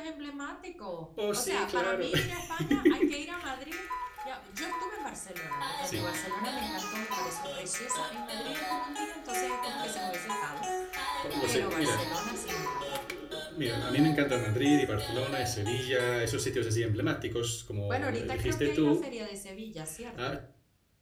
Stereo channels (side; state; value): both; identical; correlation 1.00